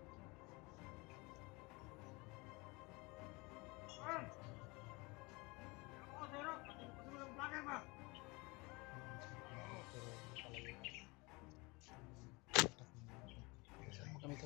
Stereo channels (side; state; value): right; quieter; 25.8 dB